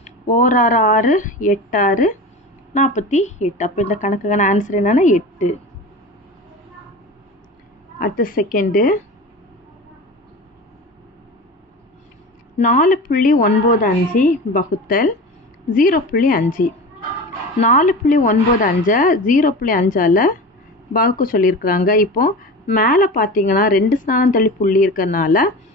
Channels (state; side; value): normal; both; correlation 0.31